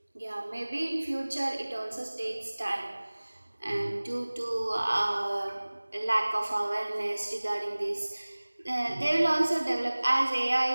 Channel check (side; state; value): both; inverted; correlation -1.00